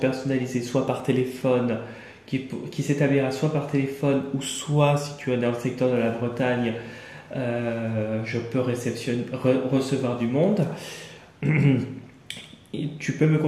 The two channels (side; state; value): both; identical; correlation 1.00